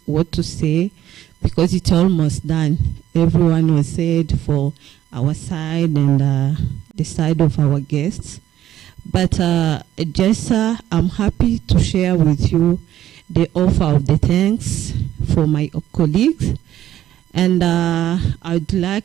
what to say because it's almost done. Everyone was said for our side and the side of our guests. But just I'm happy to share with you the offer of the thanks for my colleagues. And I'd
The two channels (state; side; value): quieter; left; 12.3 dB